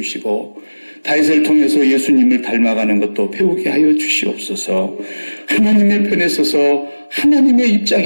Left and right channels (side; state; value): both; inverted; correlation -1.00